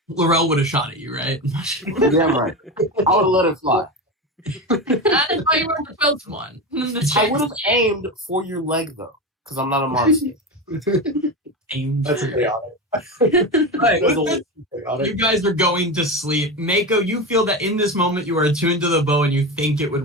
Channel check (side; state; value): both; normal; correlation 0.20